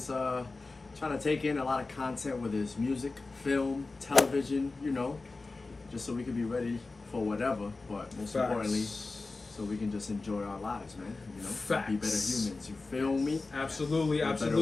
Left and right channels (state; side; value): quieter; right; 3.6 dB